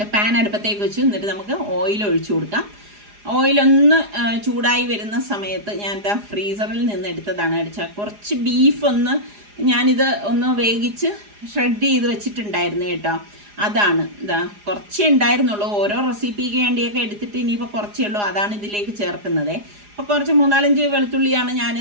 പാൻ അടുപ്പത്തേക്ക് വെച്ചു. എന്നിട്ട് നമുക്ക് ഓയിൽ ഒഴിച്ചു കൊടുക്കാം. ഓയിലൊന്ന് ചൂടായി വരുന്ന സമയത്ത് ഞാൻ ഫ്രീസറിൽ നിന്ന് എടുത്തതാണ്. കുറച്ച് ബീഫ് ഞാനിത് ഒന്ന് വേവിച്ച് ഷ്രെഡ് ചെയ്ത് വെച്ചിട്ടുണ്ടായിരുന്നു കേട്ടോ. അതാണ് കുറച്ചേ ഉണ്ടായിരുന്നുള്ളൂ. ഓരോ റെസിപ്പിക്ക് വേണ്ടിയൊക്കെ എടുത്തിട്ട് ഇനിയിപ്പോൾ കുറച്ചേ ഉള്ളൂ. അതാണ് ഇതിലേക്ക് ചേർക്കുന്നത്. അപ്പോൾ കുറച്ച് 3-4 വെളുത്തുള്ളിയാണ് ഞാൻ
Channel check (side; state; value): left; late; 4.9 ms